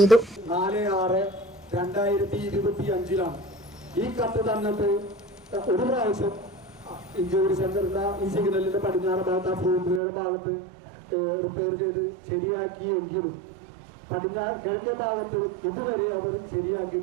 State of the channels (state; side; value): drops out; left; at 10.0 s